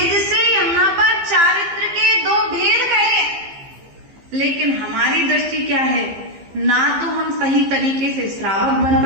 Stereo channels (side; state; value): left; late; 15 ms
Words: से यहाँ पर चारित्र के 2 भेद कहे। लेकिन हमारी दृष्टि क्या है? ना तो हम सही तरीके से श्रावक बन